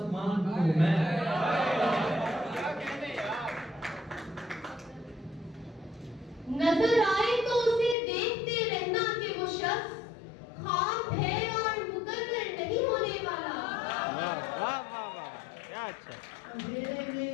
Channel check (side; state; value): right; drops out; at 8.0 s